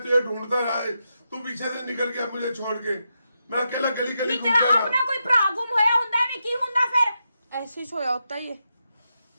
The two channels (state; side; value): inverted; both; correlation -0.86